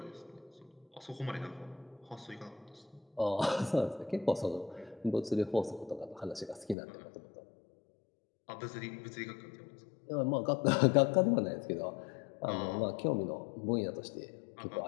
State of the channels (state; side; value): drops out; right; at 6.8 s